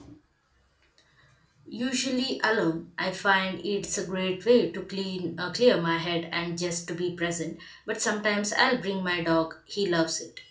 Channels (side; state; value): both; identical; correlation 1.00